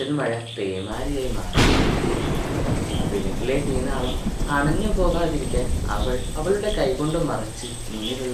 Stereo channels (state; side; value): identical; both; correlation 1.00